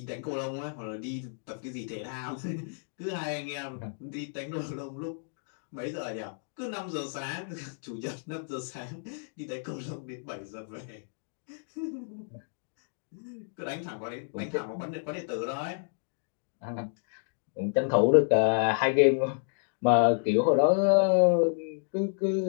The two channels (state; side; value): silent; right; digital silence